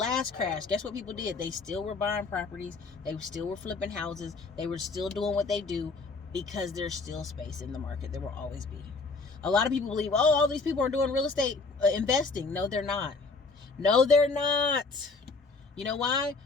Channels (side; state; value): right; quieter; 4.1 dB